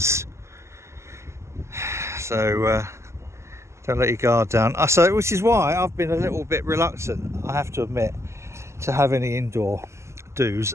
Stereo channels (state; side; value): late; left; 0.13 ms